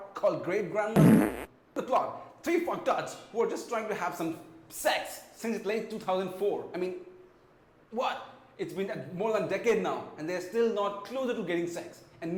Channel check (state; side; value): identical; both; correlation 1.00